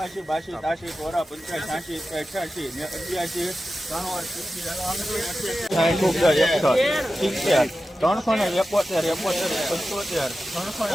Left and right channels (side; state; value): both; normal; correlation 0.93